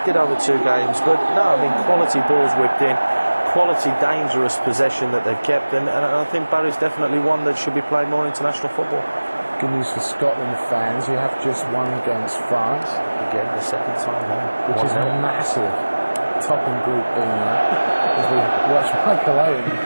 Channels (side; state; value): both; inverted; correlation -1.00